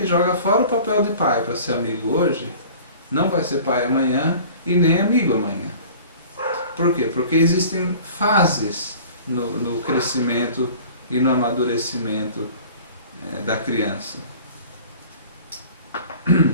joga fora o papel de pai para ser amigo hoje, não vai ser pai amanhã e nem amigo amanhã. Por quê? Porque existem fases no crescimento e no amadurecimento da criança.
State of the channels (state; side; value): inverted; both; correlation -0.44